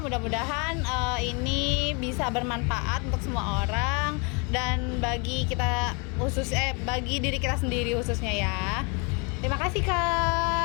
Mudah-mudahan ini bisa bermanfaat untuk semua orang dan bagi bagi diri kita sendiri khususnya ya. Terima kasih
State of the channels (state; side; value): quieter; right; 32.5 dB